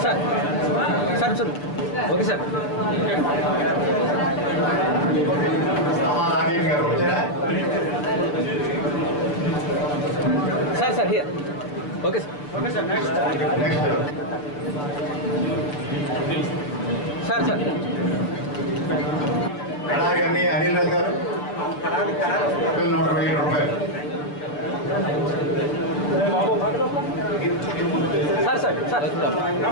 sir sir sir okay sir Rajesh గారు వచ్చారా? Sir sir here okay sir okay sir next sir sir Kadari Anil Raju గారు ₹120,000. Sir sir sir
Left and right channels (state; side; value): late; right; 6.9 ms